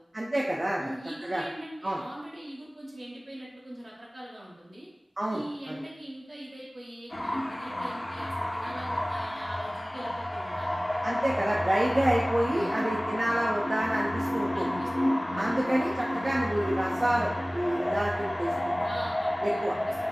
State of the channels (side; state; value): both; normal; correlation 0.98